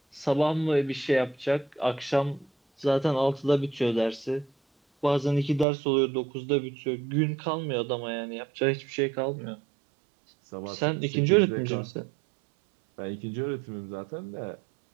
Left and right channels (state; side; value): drops out; left; at 5.7 s